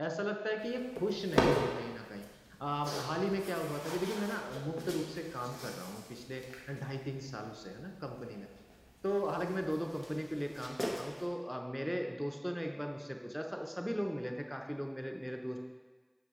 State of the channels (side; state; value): both; identical; correlation 1.00